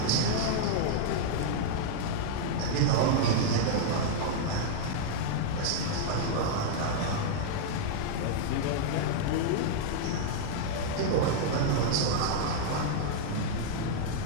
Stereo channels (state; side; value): different; both; correlation -0.01